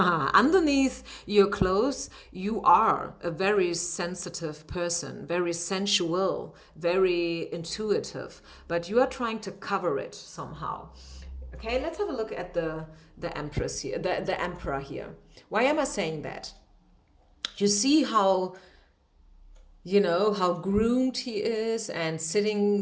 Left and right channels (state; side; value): identical; both; correlation 1.00